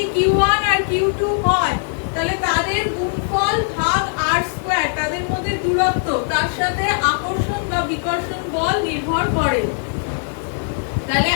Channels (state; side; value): silent; right; 66 dB below the other